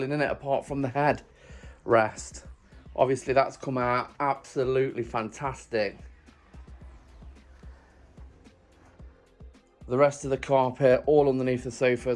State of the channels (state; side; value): identical; both; correlation 1.00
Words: in it apart from the head rest. Obviously that's come out absolutely fantastic. The rest of the carpet, all underneath the